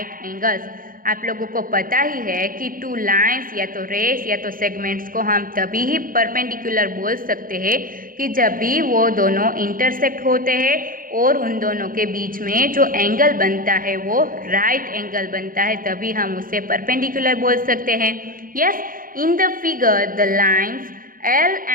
angles। आप लोगों को पता ही है कि 2 lines या तो race या तो सेगमेंट्स को हम तभी ही परपेंडिकुलर बोल सकते हैं कि जब भी वो दोनों इंटरसेक्ट होते हैं और उन दोनों के बीच में जो एंगल बनता है वो राइट एंगल बनता है, तभी हम उसे परपेंडिकुलर बोल सकते हैं। Yes, in the figure the lines L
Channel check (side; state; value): left; late; 0.41 ms